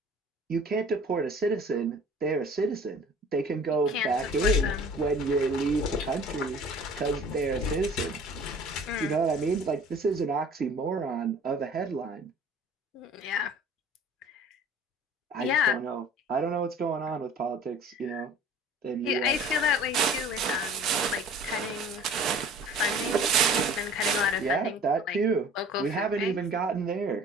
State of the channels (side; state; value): both; normal; correlation 0.48